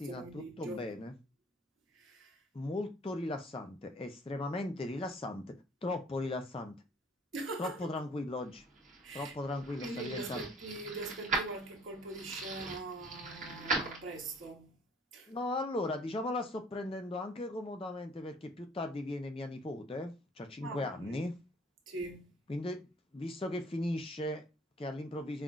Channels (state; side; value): normal; both; correlation 0.55